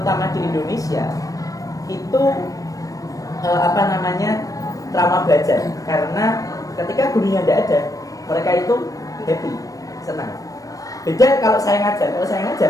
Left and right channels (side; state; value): right; late; 0.17 ms